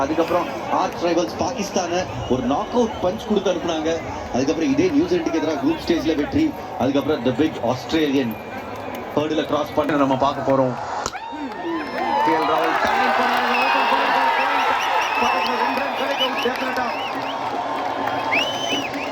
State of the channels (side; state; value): both; identical; correlation 1.00